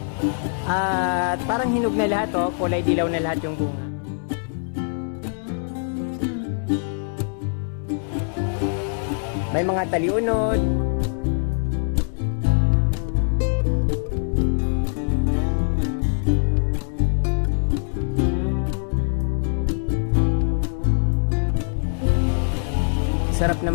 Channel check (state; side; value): silent; right; digital silence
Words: At parang hinog na lahat, kulay dilaw na lahat yung bunga. May mga taliunod. Sarap